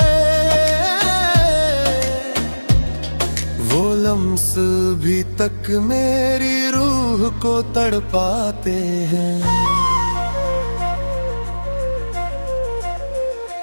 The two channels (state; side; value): inverted; both; correlation -1.00